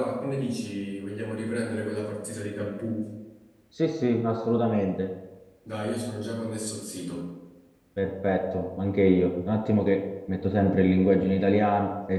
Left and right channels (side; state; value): both; identical; correlation 1.00